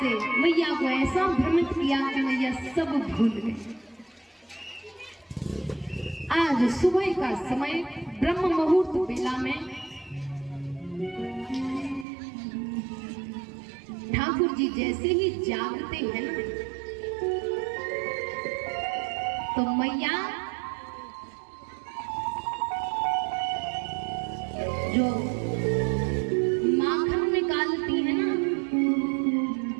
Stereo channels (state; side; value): drops out; left; at 12.1 s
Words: मैया को ऐसा भ्रमित किया कि मैया सब भूल गई। आज सुबह का समय ब्रह्म मुहूर्त बेला में ठाकुर जी जैसे ही जागते हैं ना, तो मैया जो माखन निकालती है ना,